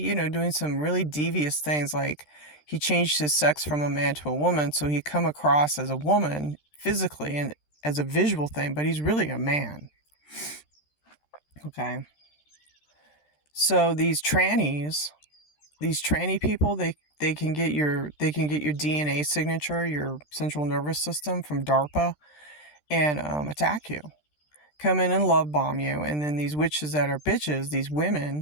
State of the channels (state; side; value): late; right; 13 ms